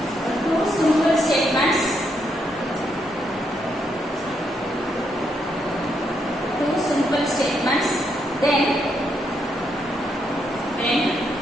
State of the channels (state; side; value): normal; both; correlation 0.78